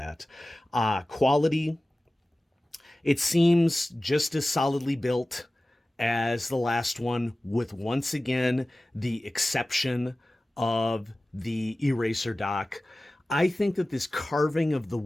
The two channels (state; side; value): normal; both; correlation 0.96